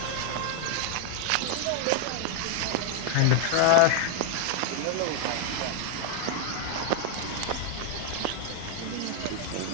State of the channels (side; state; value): both; different; correlation 0.00